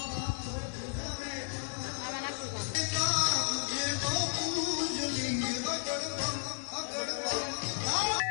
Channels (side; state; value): right; silent; digital silence